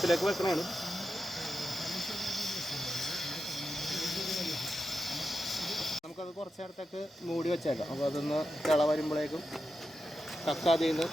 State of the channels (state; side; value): normal; both; correlation 0.89